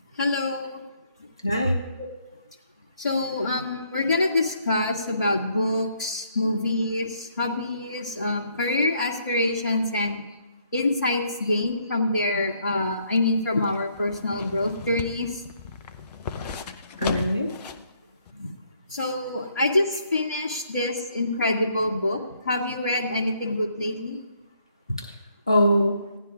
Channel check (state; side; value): inverted; both; correlation -0.69